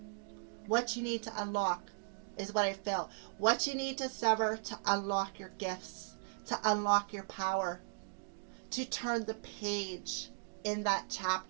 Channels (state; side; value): silent; left; digital silence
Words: What you need to unlock is what I feel. What you need to sever to unlock your gifts, to unlock your power, to turn the page in that